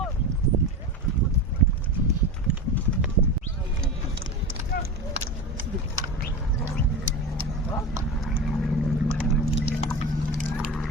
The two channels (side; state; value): both; normal; correlation 0.26